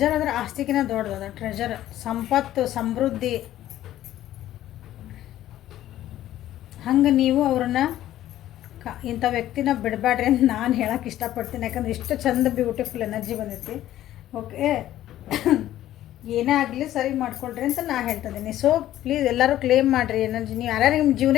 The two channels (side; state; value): right; quieter; 13.3 dB